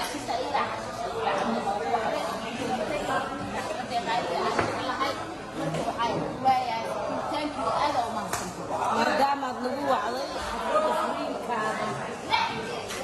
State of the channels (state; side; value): identical; both; correlation 1.00